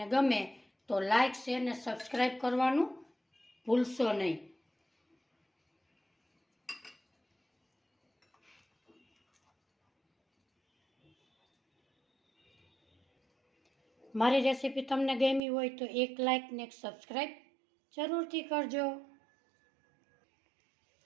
ગમે તો લાઈક, શેર અને સબસ્ક્રાઈબ કરવાનું ભૂલશો નહીં। મારી રેસીપી તમને ગમી હોય તો એક લાઈક ને એક સબસ્ક્રાઈબ જરૂરથી કરજો।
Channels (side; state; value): left; drops out; at 15.4 s